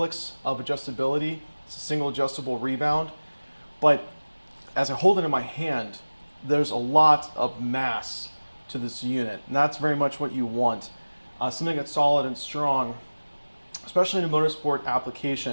of adjustability. It's a single adjustable rebound, but as I hold it in my hand, there's a lot of mass to this unit, and that's very much what you want. Something that's solid and strong, especially in a motorsport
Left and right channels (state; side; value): inverted; both; correlation -1.00